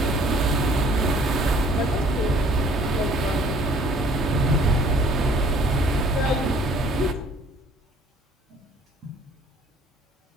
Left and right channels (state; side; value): normal; both; correlation 0.56